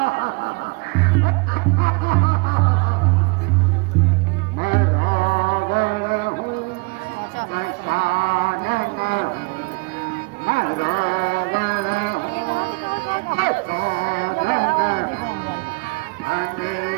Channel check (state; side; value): quieter; left; 28.6 dB